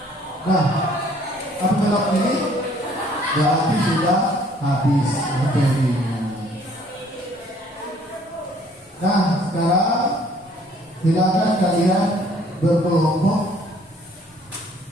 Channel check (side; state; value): both; normal; correlation 0.59